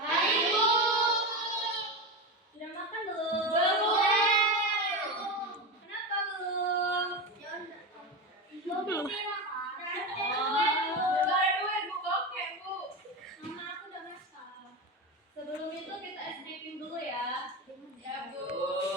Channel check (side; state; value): both; normal; correlation 0.19